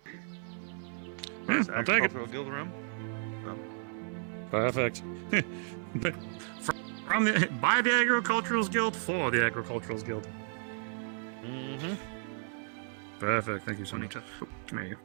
Yeah, I'll take it. Agricultural Guild rum. Perfect. But from the by the Agricultural Guild for the Agricultural Guild. Mm-hmm. Perfect. Thank you so much. Oh, come here.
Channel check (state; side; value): silent; left; 56 dB below the other